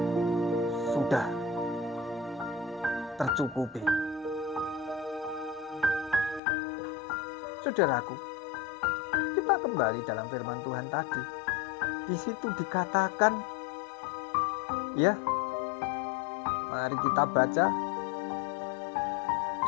Sudah tercukupi. Saudaraku, kita kembali dalam firman Tuhan tadi. Di situ dikatakan, mari kita baca.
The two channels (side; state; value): right; drops out; at 6.4 s